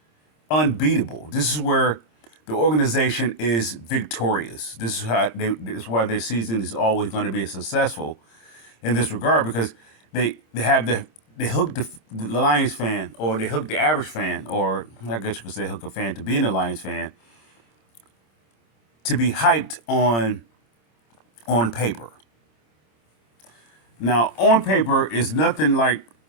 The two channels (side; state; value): right; late; 26 ms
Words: unbeatable. This is where the organization is victorious. This is why their season is always going to be successful in this regard, because they hook the Lions fan, or they hook the average fan, or I guess you could say hook a fan to being a Lions fan, to be hyped on paper. Now, on paper is nothing like